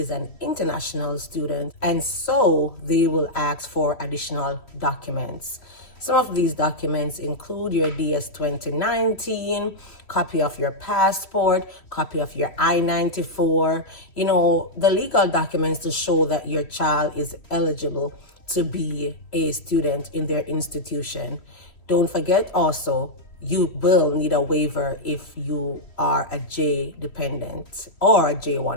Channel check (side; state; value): right; late; 3.1 ms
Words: an international student, and so they will ask for additional documents. Some of these documents include your DS-2019, copy of your passport, copy of your I-94, the legal documents to show that your child is eligible to be a student in their institution. Don't forget also, you will need a waiver if you are a J dependent or a